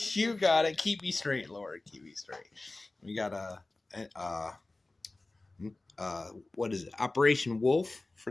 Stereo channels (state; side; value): quieter; right; 3.0 dB